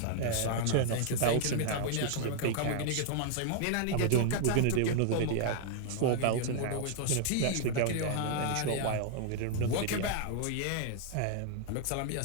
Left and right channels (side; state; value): both; different; correlation -0.01